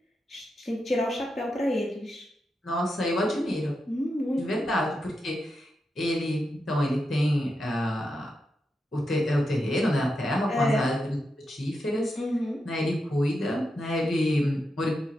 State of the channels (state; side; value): normal; both; correlation 0.87